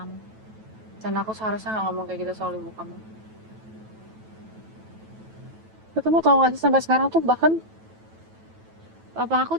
Dan aku seharusnya nggak ngomong kayak gitu soal ibu kamu. Kamu tau gak sih sampai sekarang tuh bahkan Papa aku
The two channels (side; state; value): left; late; 9.2 ms